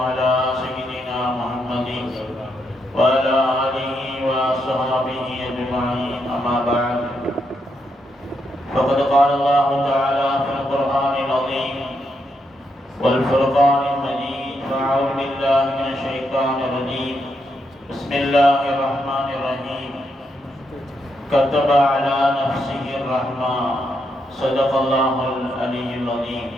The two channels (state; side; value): normal; both; correlation 0.80